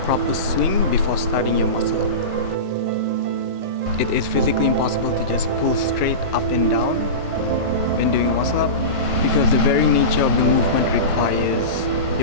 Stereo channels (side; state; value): left; late; 1.3 ms